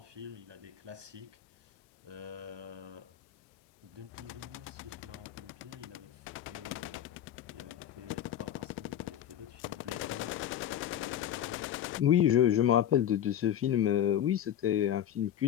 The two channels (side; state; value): right; quieter; 10.7 dB